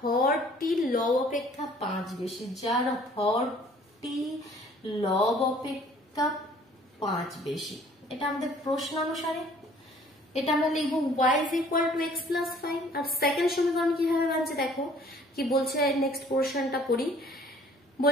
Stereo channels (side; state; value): both; normal; correlation 0.56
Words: লব অপেক্ষা 5 বেশি, যার হরটি লব অপেক্ষা 5 বেশি। এটা আমাদের প্রশ্ন অনুসারে এটা আমরা লিখবো y is equal to x plus 5। আর সেকেন্ড সমীকরণ কিভাবে বানছে দেখো কি বলছে, নেক্সট পোর্শনটা পড়ি।